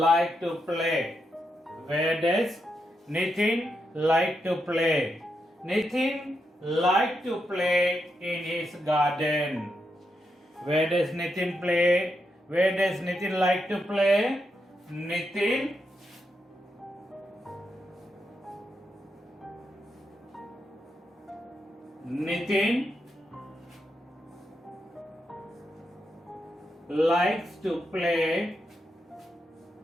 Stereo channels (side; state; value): both; normal; correlation 0.83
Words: to play? Where does Nitin like to play? Nitin like to play in his garden. Where does Nitin play? Where does Nitin like to play? Nitin likes to play